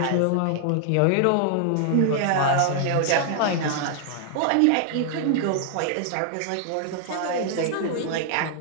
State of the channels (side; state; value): both; different; correlation 0.00